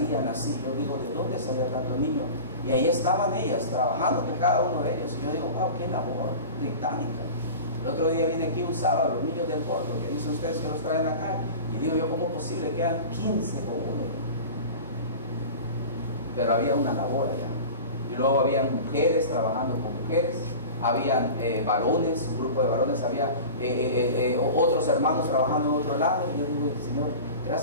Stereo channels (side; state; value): both; inverted; correlation -0.34